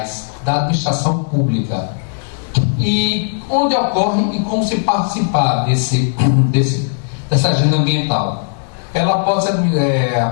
da administração pública. E onde ocorre e como se participar dessa agenda ambiental? Ela pode ser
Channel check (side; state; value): right; silent; digital silence